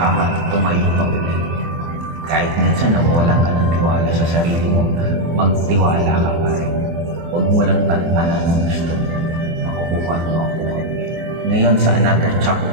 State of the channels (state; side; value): late; left; 24 ms